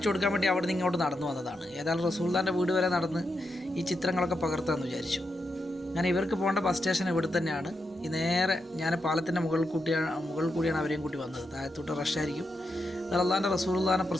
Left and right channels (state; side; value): normal; both; correlation 0.85